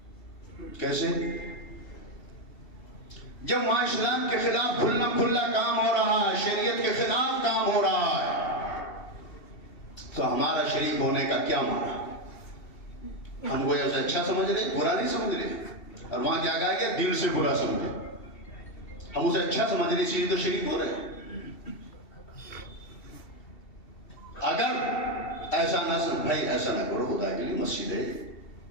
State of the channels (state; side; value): late; right; 2.7 ms